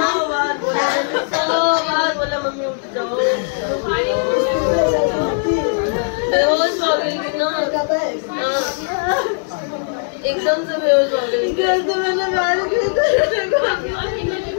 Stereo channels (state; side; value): silent; right; digital silence